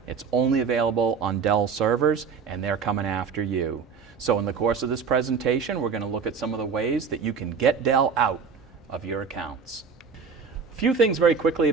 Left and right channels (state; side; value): quieter; left; 5.7 dB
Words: It's only available on Dell servers, and they're coming after you. So in the course of this presentation, we're going to look at some of the ways that you can get Dell out of your accounts. A few things very quickly